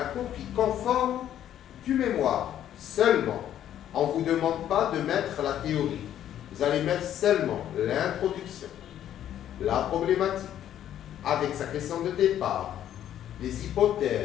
copie conforme du mémoire. Seulement, on ne vous demande pas de mettre la théorie. vous allez mettre seulement l'introduction, la problématique, avec sa question de départ, les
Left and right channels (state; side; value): quieter; right; 11.0 dB